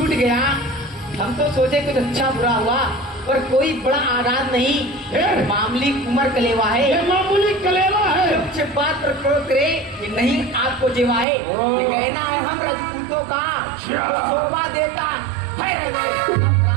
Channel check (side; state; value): left; drops out; at 11.2 s